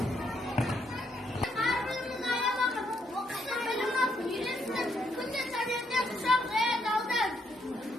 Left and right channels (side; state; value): both; normal; correlation 0.74